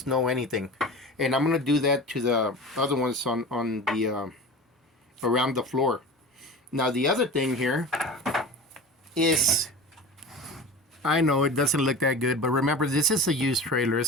no anything. And I'm gonna do that to the other ones on the around the floor. Now, the other thing here is, I know it doesn't look that good, but remember, this is a used trailer.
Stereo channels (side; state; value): both; normal; correlation 0.32